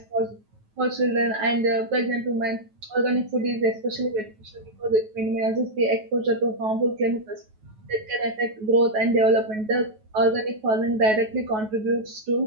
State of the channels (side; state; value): left; late; 9.3 ms